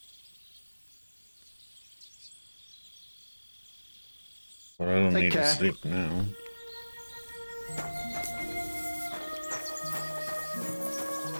But I don't Take need care. to sleep now.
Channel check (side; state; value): both; inverted; correlation -1.00